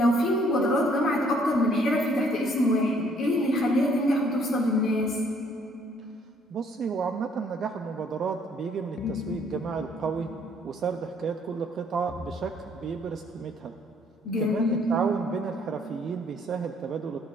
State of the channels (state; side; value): normal; both; correlation 0.64